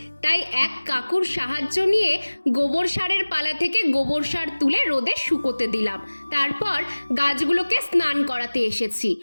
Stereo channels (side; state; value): both; inverted; correlation -1.00